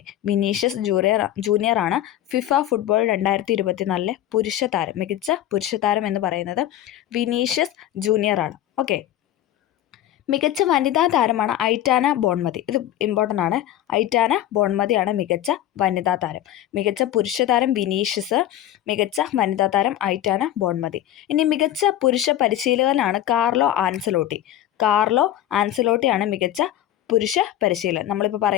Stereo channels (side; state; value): right; quieter; 12.5 dB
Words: വിനീഷ്യസ് ജൂനിയർ ആണ് ഫിഫ ഫുട്ബോൾ 2024 പുരുഷ താരം. മികച്ച പുരുഷ താരം എന്ന് പറയുന്നത് വിനീഷ്യസ് ജൂനിയർ ആണ്. ഓക്കെ, മികച്ച വനിതാ താരമാണ് ഐറ്റാന ബോൺമതി. ഇത് ഇമ്പോർട്ടൻ്റ് ആണ്. ഐറ്റാന ബോൺമതിയാണ് മികച്ച വനിതാ താരം. മികച്ച പുരുഷ താരം വിനീഷ്യസ്, മികച്ച വനിതാ താരം ഐറ്റാന ബോൺമതി. ഇനി മികച്ച പുരുഷ പരിശീലകനാണ് കാർലോ ആൻസലോട്ടിയാണ് മികച്ച പുരുഷ പരിശീലകൻ. നമ്മളിപ്പോൾ